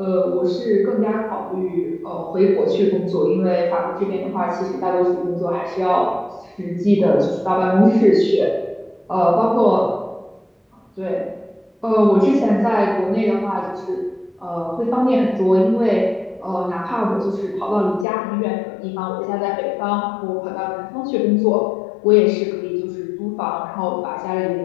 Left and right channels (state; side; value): drops out; right; at 18.1 s